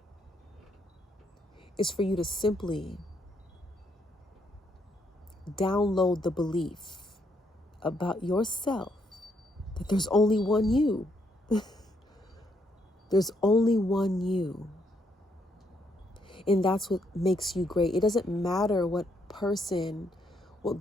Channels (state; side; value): normal; both; correlation 0.74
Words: is for you to simply download the belief about yourself that there's only one you. There's only one you. And that's what makes you great. It doesn't matter what person, what